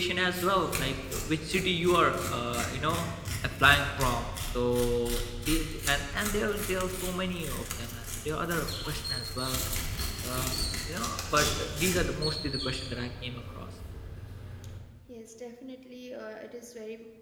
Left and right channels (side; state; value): both; identical; correlation 1.00